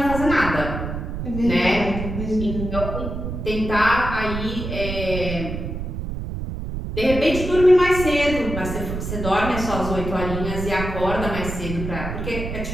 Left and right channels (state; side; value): noise; right; rumble, 5 dB below the sound